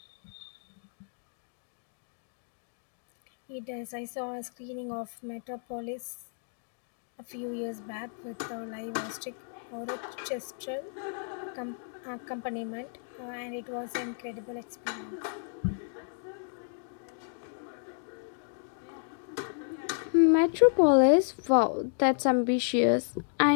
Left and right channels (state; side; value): silent; right; digital silence